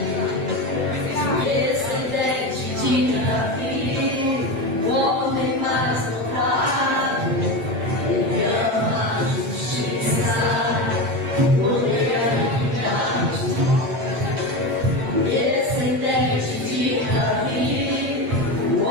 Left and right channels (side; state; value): left; late; 7.7 ms